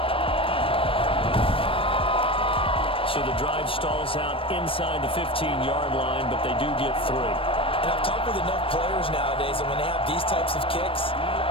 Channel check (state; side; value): late; right; 0.26 ms